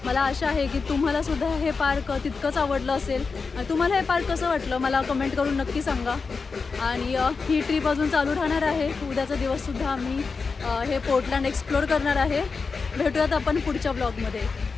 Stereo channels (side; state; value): right; quieter; 4.7 dB